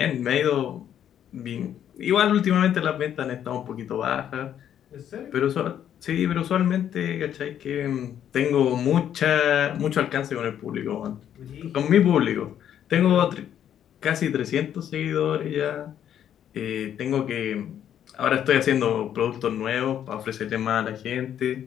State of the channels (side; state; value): right; quieter; 9.9 dB